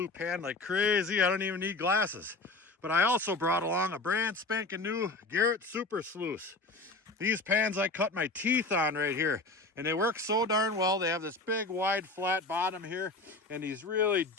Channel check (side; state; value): right; quieter; 3.2 dB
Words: pan like crazy. I don't even need glasses. But I also brought along a brand spanking new Garrett Super Sluice. These pans I cut my teeth on right here, and they work so darn well. They have this big, wide, flat bottom here, and these really